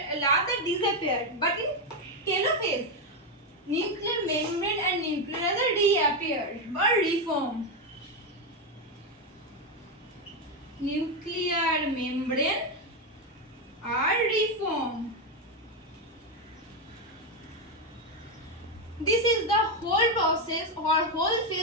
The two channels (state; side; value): normal; both; correlation 0.07